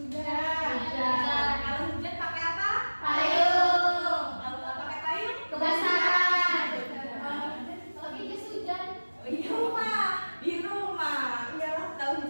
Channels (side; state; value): both; inverted; correlation -1.00